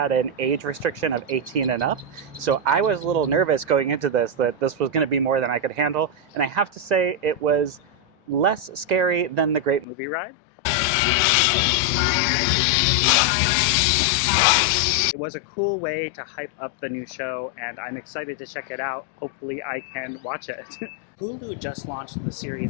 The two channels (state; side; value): drops out; right; at 9.9 s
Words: an age restriction of 18 and up. So I was a little nervous going into this, that this was going to be more than I could handle. And I have to say, it was less scary than the Great Movie Ride. It was a cool way to hype up the new show, and I'm excited to check it out. Hopefully I can watch it. Hulu just launched the